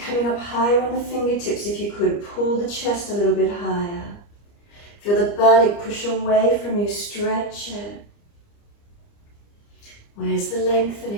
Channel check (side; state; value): right; late; 29 ms